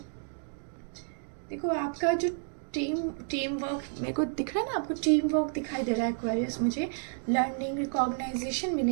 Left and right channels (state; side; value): silent; left; digital silence